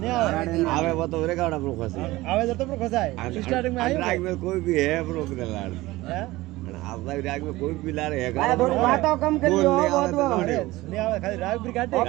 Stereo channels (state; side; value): quieter; left; 18.8 dB